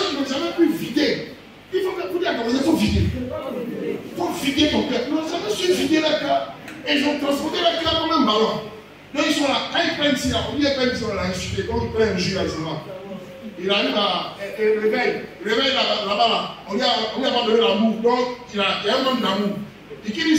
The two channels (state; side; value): identical; both; correlation 1.00